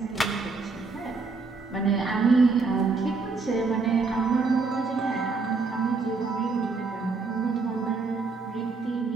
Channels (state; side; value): quieter; left; 4.2 dB